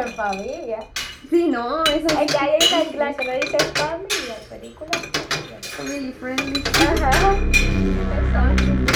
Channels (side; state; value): both; identical; correlation 1.00